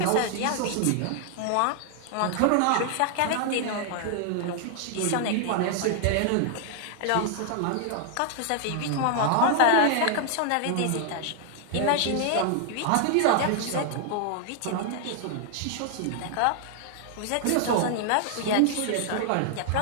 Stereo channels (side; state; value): both; different; correlation 0.00